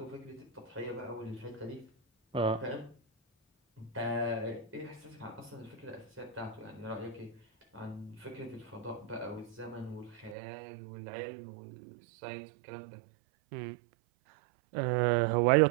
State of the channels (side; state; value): left; drops out; at 10.4 s